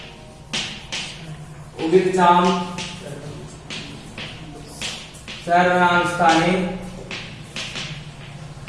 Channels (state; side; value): identical; both; correlation 1.00